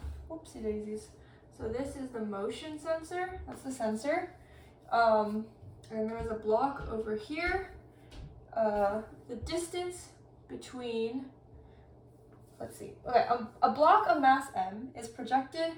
whoopsie daisies. So this is the motion sensor. That's the sensor. And there's a block over here. The distance between, let's see, okay, a block of mass m is projected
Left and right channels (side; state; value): both; identical; correlation 1.00